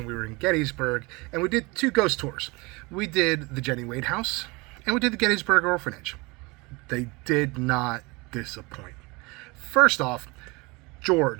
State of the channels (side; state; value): left; quieter; 25.7 dB